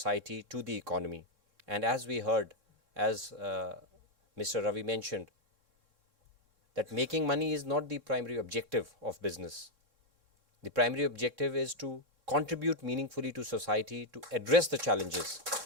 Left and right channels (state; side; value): late; left; 3.6 ms